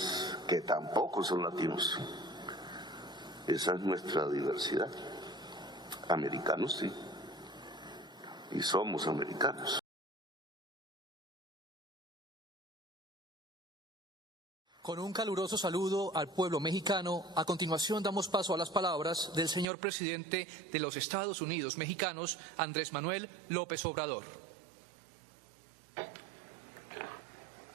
que tampoco son latinos. Esa es nuestra diversidad. Americanos sí, y somos americanos. Con un caluroso saludo al pueblo mexicano, a continuación damos paso a las palabras del señor presidente de los Estados Unidos mexicanos, Andrés Manuel López Obrador.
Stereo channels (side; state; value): left; drops out; at 19.7 s